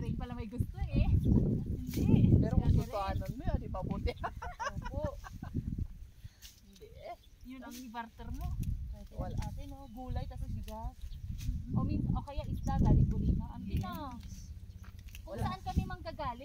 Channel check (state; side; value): identical; both; correlation 1.00